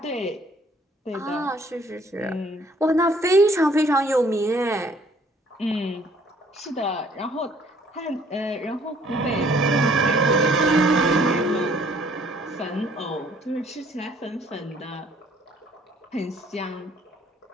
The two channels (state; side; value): normal; both; correlation 0.60